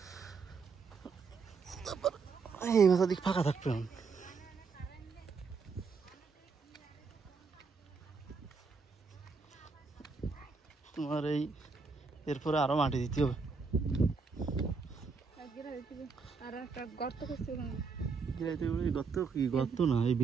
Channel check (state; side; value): quieter; left; 4.9 dB